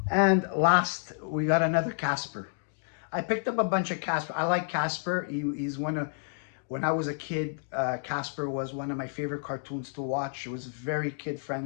And last, we got another Casper. I picked up a bunch of Casper. I like Casper. He's one of, when I was a kid, Casper was one of my favorite cartoons to watch. It was very kid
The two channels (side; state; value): right; silent; digital silence